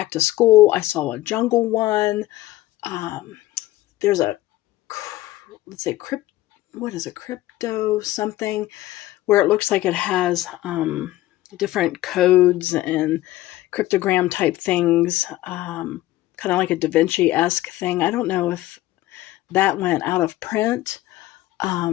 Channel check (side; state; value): right; quieter; 16.3 dB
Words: to school. I saw a jungle one. There's a, let's say, what is a crypto something, where it looks like it has different codes and cryptogram type things, kind of like a Da Vinci-esque thing. I don't know if that went out of print.